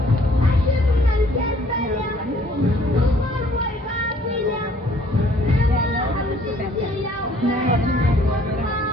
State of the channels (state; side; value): normal; both; correlation 0.60